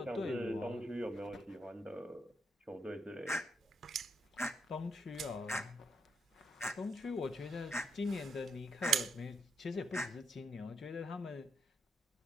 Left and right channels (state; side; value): normal; both; correlation 0.79